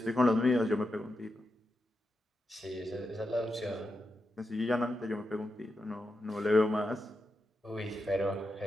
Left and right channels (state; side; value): normal; both; correlation 0.87